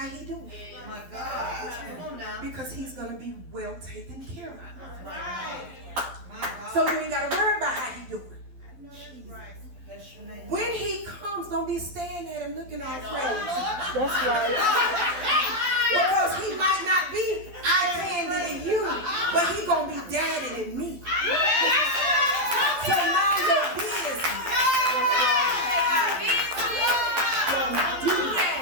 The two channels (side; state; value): left; late; 12 ms